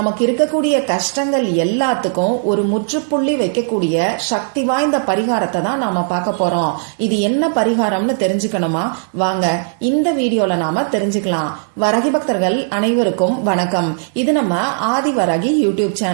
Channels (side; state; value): left; silent; digital silence